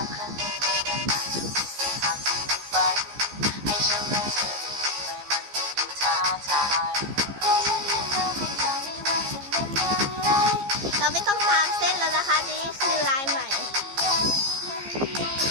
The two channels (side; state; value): left; late; 15 ms